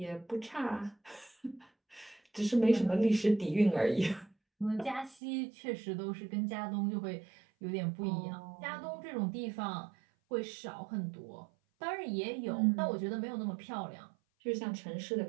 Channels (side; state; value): left; drops out; at 5.2 s